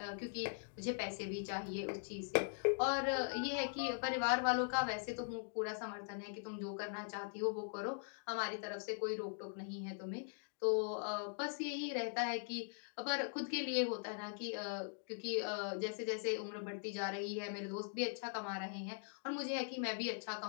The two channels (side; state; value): right; silent; digital silence